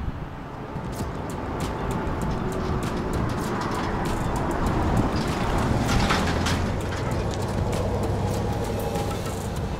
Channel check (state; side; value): identical; both; correlation 1.00